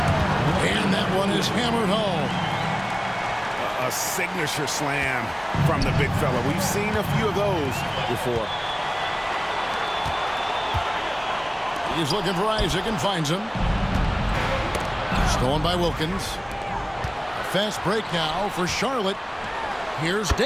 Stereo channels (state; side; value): identical; both; correlation 1.00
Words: And that one is hammered home. A signature slam from the big fella. We've seen a few of those before. He's looking for Isaac and finds him. Stolen by Wilkins. Fast break now for Charlotte. Here's